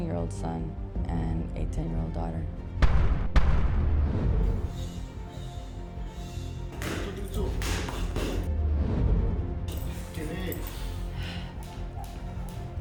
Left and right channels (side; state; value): both; identical; correlation 1.00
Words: son, and a 10-year-old daughter.